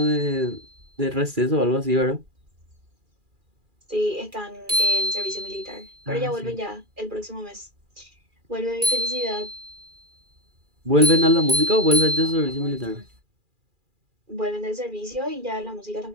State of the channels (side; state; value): left; late; 2.4 ms